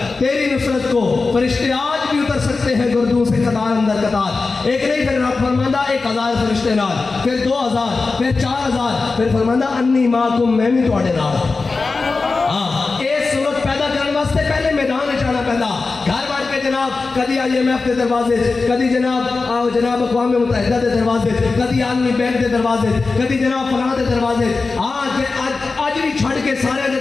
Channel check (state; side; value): quieter; right; 4.0 dB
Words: تیری نصرت کو فرشتے آج بھی اتر سکتے ہیں گردوں سے قطار اندر قطار. ایک نہیں پھر رب فرماندہ 1000 فرشتے نال, پھر 2000, پھر 4000, پھر فرماندہ انی ماکم میں بھی تواڈے نال. ہاں اس صورت پیدا کرنے واسطے پہلے میدان جانا پہلا گھر بار کے جناب کدی آئی ایم ایف کے دروازے, کدی جناب اقوام متحدہ کے دروازے, کدی عالمی بینک کے دروازے, کدی جناب فلاں کے دروازے. آج بھی چھڑ کے سارے کے